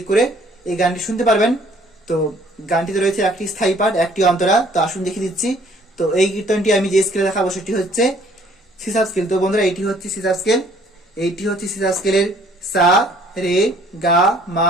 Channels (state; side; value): normal; both; correlation 0.59